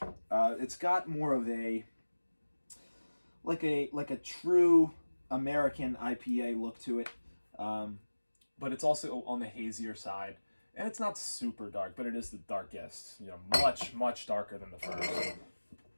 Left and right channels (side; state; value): both; inverted; correlation -1.00